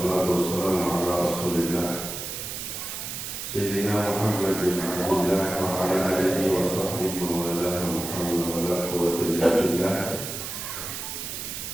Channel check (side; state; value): right; noise; hiss, 6 dB below the sound